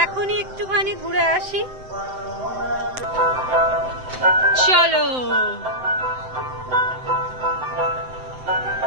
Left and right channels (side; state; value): left; late; 7.8 ms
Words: এখনই একটুখানি ঘুরে আসি। চলো